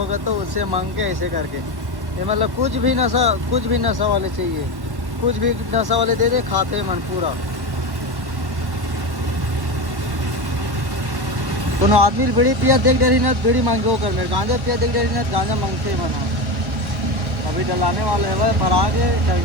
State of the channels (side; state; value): left; late; 1.1 ms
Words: तो उससे मांग के ऐसे करके ये मतलब कुछ भी नशा वाले चाहिए कुछ भी नशा वाले दे दे खाते मन पूरा। कोनो आदमी बीड़ी पिया देख डरी ना बीड़ी मांगे कर मेरे गांजा पिया देख डरी ना गांजा मांगते बना। अभी डलाने वाले है भाई भरा गया